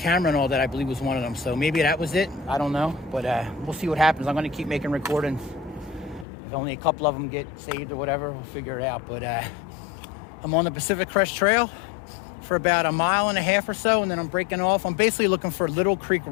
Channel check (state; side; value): drops out; right; at 6.2 s